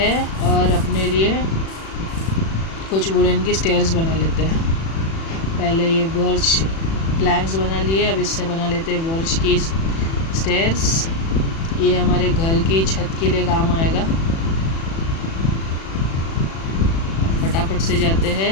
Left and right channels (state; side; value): late; right; 36 ms